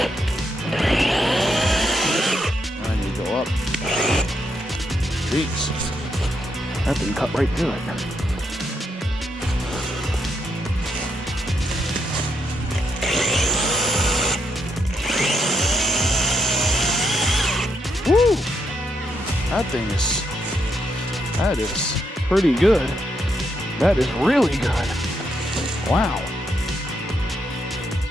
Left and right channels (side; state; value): both; normal; correlation 0.79